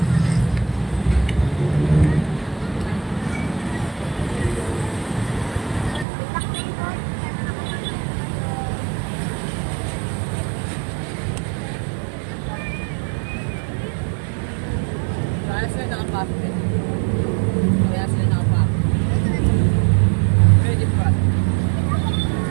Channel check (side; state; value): left; drops out; at 6.1 s